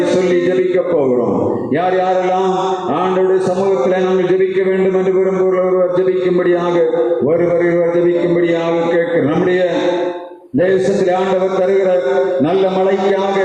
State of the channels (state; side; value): identical; both; correlation 1.00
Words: சொல்லி ஜெபிக்க போகிறோம். யார் யாரெல்லாம் ஆண்டவருடைய சமூகத்திலே நாங்கள் ஜெபிக்க வேண்டும் என்று விரும்புகிறவர் ஜெபிக்கும்படியாக ஒருவர் ஜெபிக்கும்படியாக கேட்கிறோம். நம்முடைய தேசத்தில் ஆண்டவர் தருகிற நல்ல மழைக்காக,